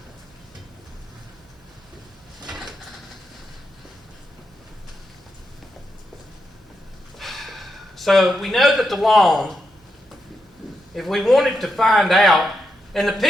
So we know that the long, if we wanted to find out, and the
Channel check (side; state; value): both; normal; correlation 0.84